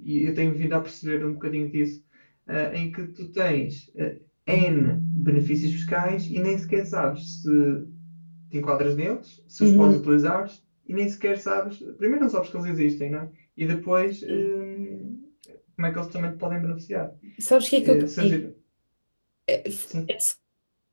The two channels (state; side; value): inverted; both; correlation -1.00